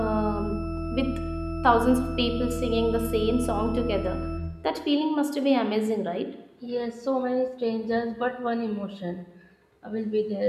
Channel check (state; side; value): identical; both; correlation 1.00